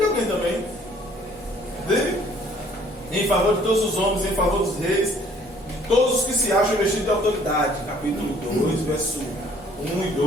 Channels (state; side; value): normal; both; correlation 0.59